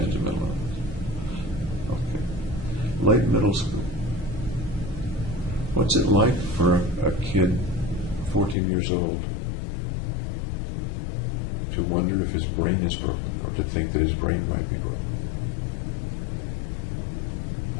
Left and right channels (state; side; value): drops out; right; at 8.6 s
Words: of mental illness. Okay. Late middle school. What's it like for a kid, 14 years old, to wonder if his brain is broken or to think that his brain might be broken?